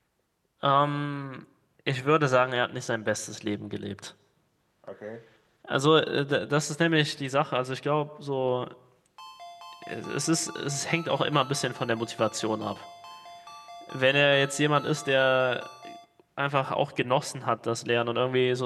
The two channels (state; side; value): identical; both; correlation 1.00